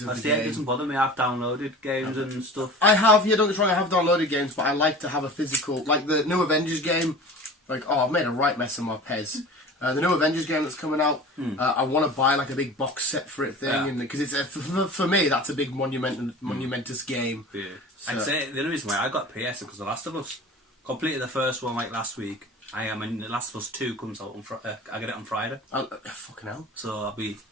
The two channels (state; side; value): normal; both; correlation 0.38